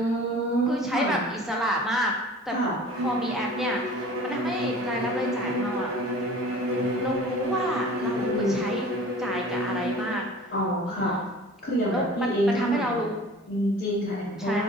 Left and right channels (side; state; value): both; normal; correlation 0.44